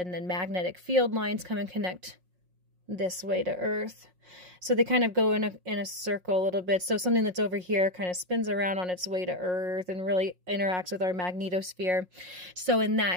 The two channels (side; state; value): left; late; 5.5 ms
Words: then magnetic field lines come and connect this way to Earth. So they kind of go in a circle a little bit. So something that's over here kind of spins around on its way to Earth and really interacts with our magnetosphere. So in